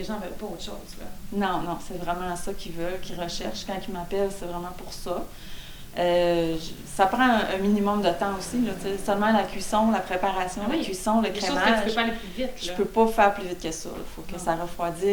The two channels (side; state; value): both; identical; correlation 1.00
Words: gens veulent pas autre chose, là. Non, non, c'est vraiment ça qu'ils veulent, qu'ils recherchent. Quand ils m'appellent, c'est vraiment pour ça. Ça prend un minimum de temps aussi. Là, seulement la cuisson, la préparation, la cuisson, le crémage. Que tu peux pas aller plus vite. Je peux pas faire plus vite que ça. Il faut que ça